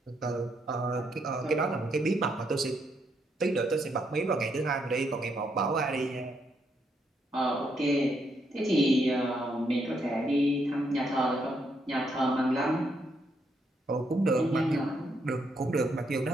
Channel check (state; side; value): normal; both; correlation 0.76